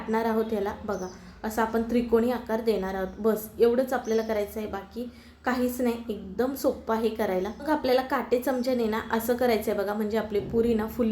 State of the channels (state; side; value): identical; both; correlation 1.00